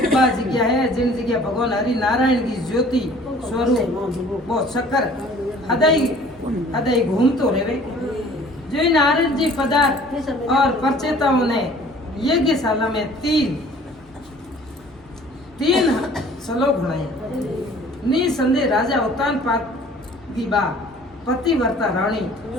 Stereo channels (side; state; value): both; normal; correlation 0.51